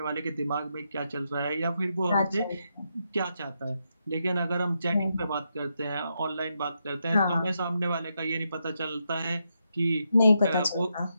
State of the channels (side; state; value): both; inverted; correlation -0.82